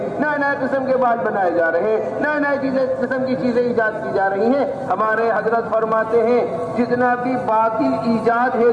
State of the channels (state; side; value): identical; both; correlation 1.00